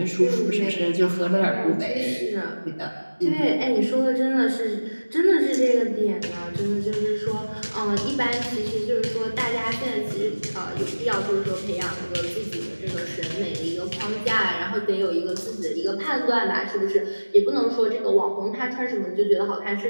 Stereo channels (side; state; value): both; inverted; correlation -1.00